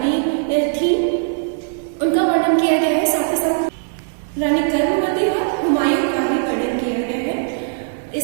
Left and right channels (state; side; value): silent; left; digital silence